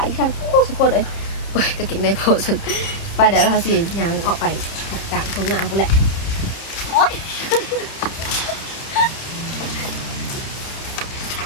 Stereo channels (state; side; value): late; right; 30 ms